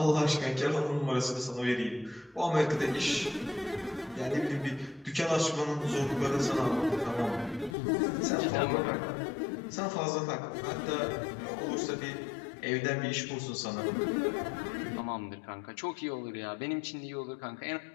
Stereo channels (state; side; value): drops out; right; at 7.8 s